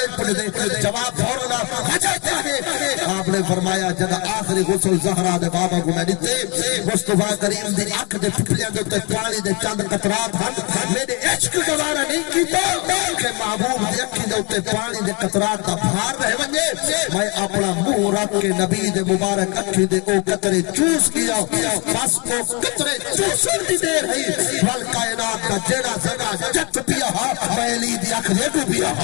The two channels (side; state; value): right; quieter; 31.0 dB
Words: پڑھ دے جواب بھوڑنا وجہ کیا آپ نے فرمایا جب آخری غسل زہرا دے بابا کو میں دیتے مصطفیٰ کریم دی اکھ دے پھپلیاں دے تے پانی دے چند قطرات ہن میرے عشق گوارا نہیں کیتا کہ محبوب دی اکھی دے تے پانی دے قطرات دا بھار رہ ونجے میں اپنا منہ رکھ کے نبی دے مبارک اکھی دے او قطرے چوس کیا بس او قطرے چوسن دی دیر ہے ول کائنات کا جیڑا زنا جت پیا میں علی دی اکھ دے کو پیا